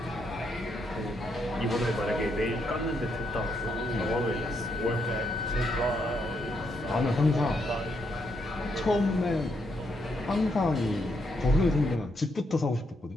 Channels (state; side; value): normal; both; correlation 0.77